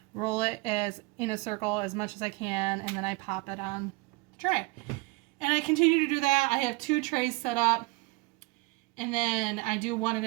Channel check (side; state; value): left; quieter; 24.1 dB